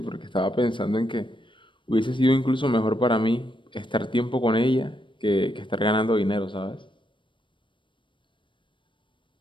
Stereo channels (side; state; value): right; late; 0.24 ms